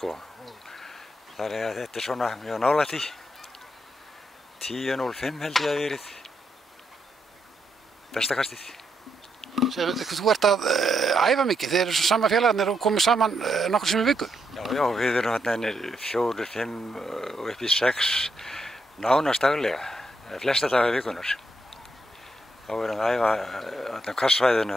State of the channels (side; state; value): both; normal; correlation 0.80